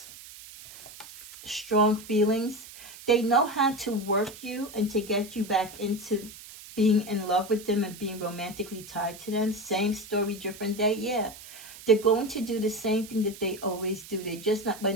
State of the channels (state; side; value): noise; right; hiss, 16 dB below the sound